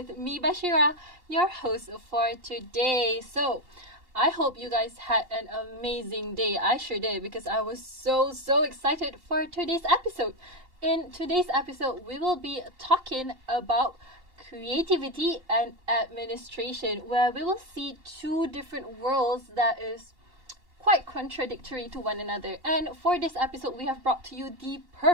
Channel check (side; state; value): left; late; 2.8 ms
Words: me, Bashira, your host for today. So, I hope you guys had an amazing day. I sure did because I was so excited for today's episode. In today's episode, we will be talking about creativity and administration, where we will see two different worlds that is quite contradictory to one another. And for this episode, we have brought to you the